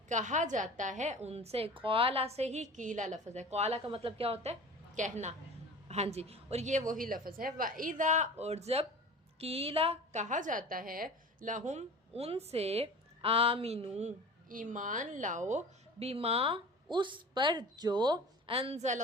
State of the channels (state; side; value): normal; both; correlation 0.38